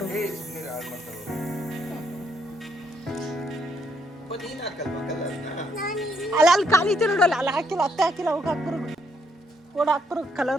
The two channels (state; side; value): normal; both; correlation 0.73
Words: ಅಲ್ಲ ಅಲ್ಲಿ ಖಾಲಿ ಐತೆ ನೋಡಲ್ಲ, ಅಲ್ಲಿ ಹಾಕಿಲ್ಲ, ಅತ್ತೆ ಹಾಕಿಲ್ಲ, ಹೋಗಿ ಹಾಕ್ಬರೋದು. ಓಡ ಹಾಕ್ಬರೋದು